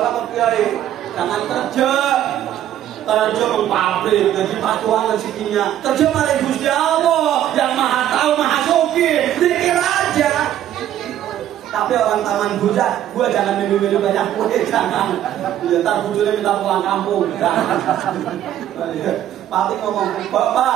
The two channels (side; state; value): left; quieter; 11.6 dB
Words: Pak Kiai, jangan kerja mempabrik, jadi pacuan rezekinya. Kerja malah Gusti Allah yang maha tahu, maha sugih. Pikir aja. Tapi orang taman bujak, gua jangan minum-minum banyak kue, jangan. Ya, ntar bujurnya minta pulang kampung. Pati ngomong,